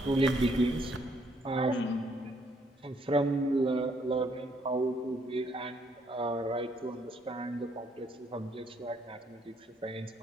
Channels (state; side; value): normal; both; correlation 0.69